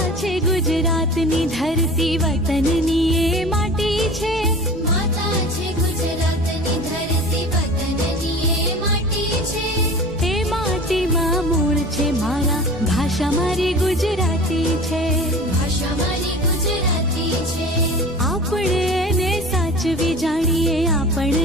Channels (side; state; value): right; noise; rumble, 17 dB below the sound